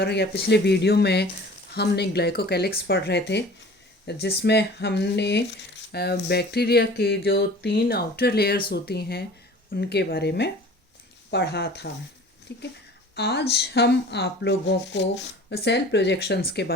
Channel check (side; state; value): both; normal; correlation 0.44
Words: या पिछले वीडियो में हमने ग्लाइकोकैलिक्स पढ़ रहे थे, जिसमें हमने बैक्टीरिया के जो 3 आउटर लेयर्स होती हैं उनके बारे में पढ़ा था। ठीक है, आज हम आप लोगों को सेल प्रोजेक्शंस के